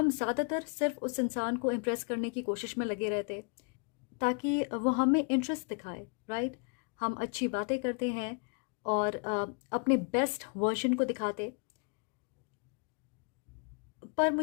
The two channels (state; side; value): quieter; right; 38.0 dB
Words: ज़्यादातर सिर्फ उस इंसान को इम्प्रेस करने की कोशिश में लगे रहते, ताकि वो हमें इंटरेस्ट दिखाए। राइट, हम अच्छी बातें करते हैं और अपने बेस्ट वर्जन को दिखाते, पर